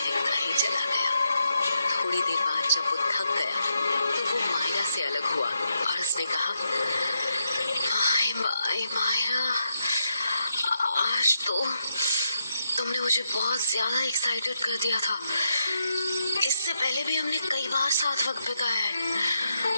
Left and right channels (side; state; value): both; inverted; correlation -0.80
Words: ही चला गया। थोड़ी देर बाद जब वो थक गया तो वो मायरा से अलग हुआ और उसने कहा, मायरा, आज तो तुमने मुझे बहुत ज्यादा एक्साइटेड कर दिया था। इससे पहले भी हमने कई बार साथ वक्त बिताया है,